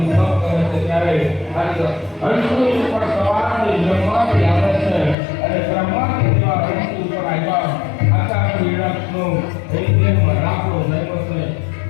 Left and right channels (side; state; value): right; drops out; at 5.2 s